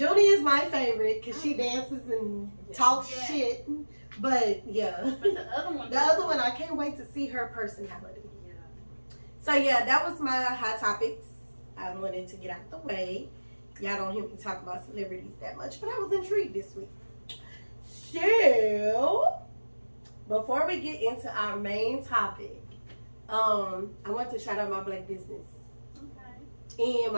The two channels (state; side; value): inverted; both; correlation -1.00